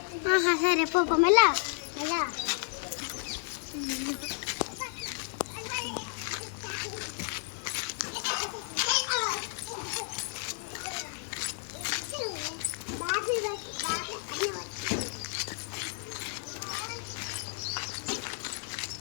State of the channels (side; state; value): right; silent; 56 dB below the other